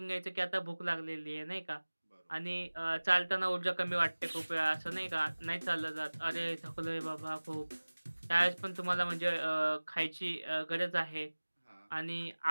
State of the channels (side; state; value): both; inverted; correlation -1.00